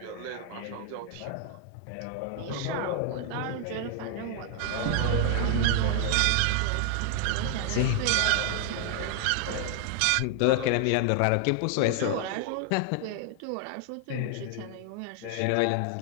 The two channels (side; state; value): both; different; correlation 0.00